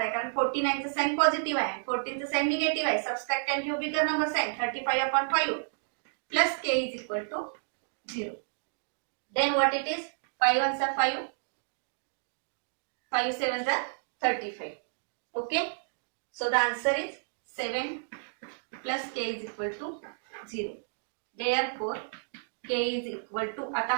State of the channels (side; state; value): left; silent; digital silence